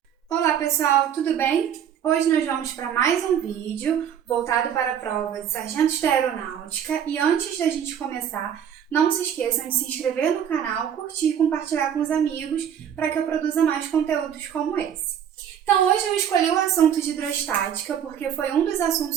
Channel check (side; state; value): left; quieter; 9.0 dB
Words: Olá pessoal, tudo bem? Hoje nós vamos para mais um vídeo voltado para a prova de Sargentos da Aeronáutica e antes da gente começar, não se esqueçam de se inscrever no canal, curtir e compartilhar com os amigos para que eu produza mais conteúdos como esse. Então hoje eu escolhi o assunto de hidrostática porque foi um dos